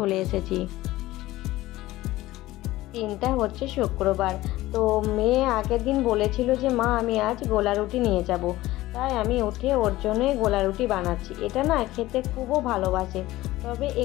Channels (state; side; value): quieter; right; 17.1 dB